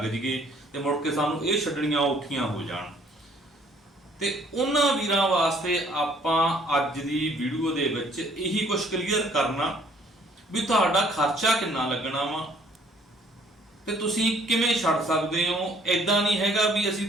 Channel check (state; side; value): normal; both; correlation 0.60